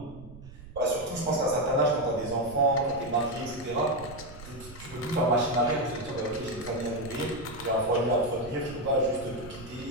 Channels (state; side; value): noise; right; rumble, 17 dB below the sound